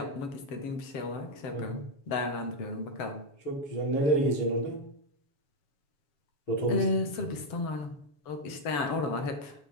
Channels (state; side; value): late; right; 7.0 ms